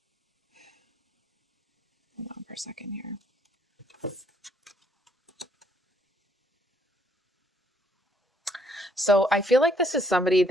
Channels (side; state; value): both; normal; correlation 0.68